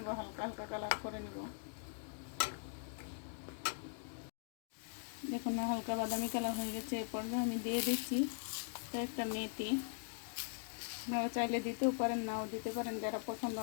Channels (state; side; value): silent; right; digital silence